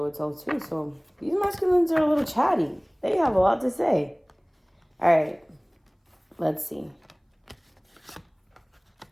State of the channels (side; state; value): both; identical; correlation 1.00